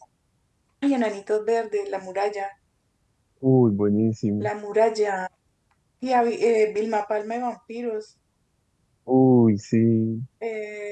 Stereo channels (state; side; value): identical; both; correlation 1.00